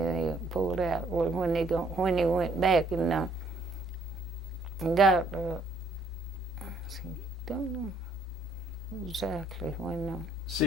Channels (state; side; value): normal; both; correlation 0.66